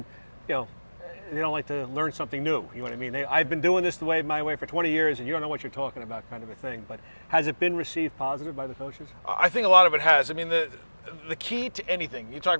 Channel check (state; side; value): inverted; both; correlation -1.00